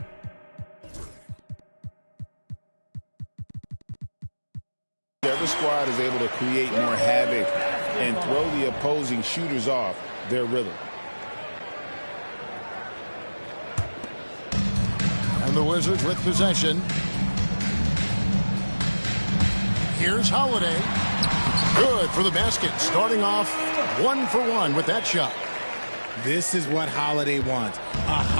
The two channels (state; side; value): inverted; both; correlation -1.00